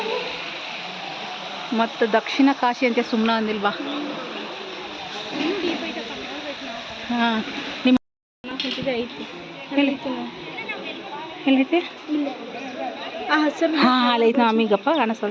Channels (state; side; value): identical; both; correlation 1.00